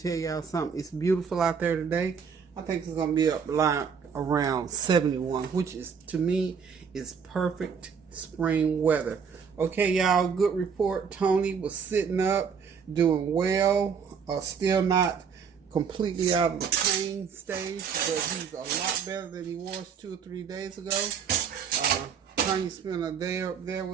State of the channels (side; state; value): left; quieter; 6.5 dB